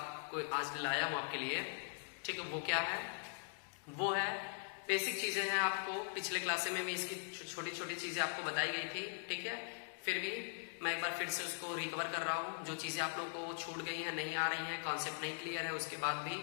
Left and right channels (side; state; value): right; silent; digital silence